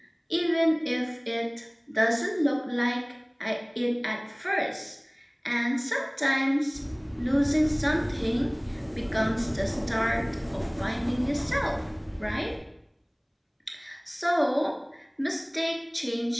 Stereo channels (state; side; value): identical; both; correlation 1.00